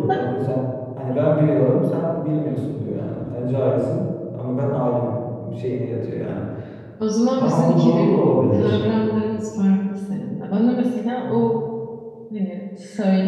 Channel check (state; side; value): identical; both; correlation 1.00